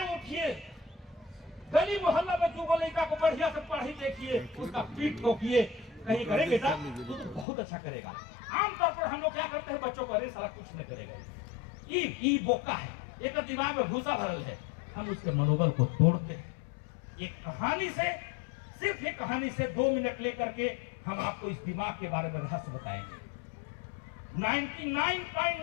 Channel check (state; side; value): drops out; right; at 7.5 s